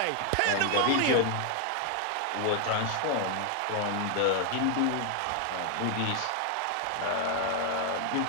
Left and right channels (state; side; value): different; both; correlation 0.01